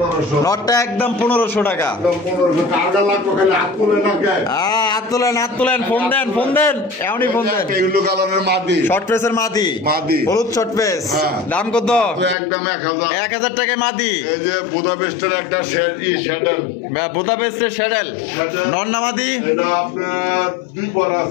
নটটা একদম 1500 টাকা। একদম 1500 টাকা লাগবে, খালি হাত তুলে না কে হাত তোলেন, ফোন দেন এমনই ফোন দেন। এগুলো কালারের মাদি, শর্ট পেসের মাদি, হলুদ শর্ট পেস, দাম কত? একদম 1000, 1000 টাকায় মাদি। এই যে বুদাপেস্টের একটা শ্যাডেল, বুদাপেস্টের শ্যাডেল নন্না মাদি, এটা আপনার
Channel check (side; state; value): right; drops out; at 12.4 s